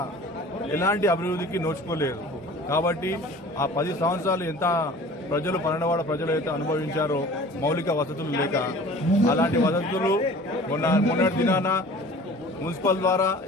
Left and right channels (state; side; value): normal; both; correlation 0.44